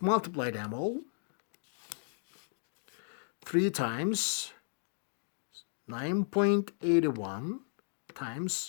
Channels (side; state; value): right; silent; digital silence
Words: multiply them all. 3 times 9.81